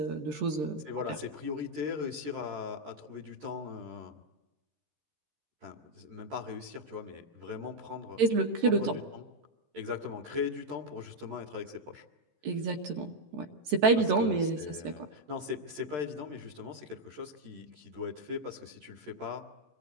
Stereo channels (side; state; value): left; late; 13 ms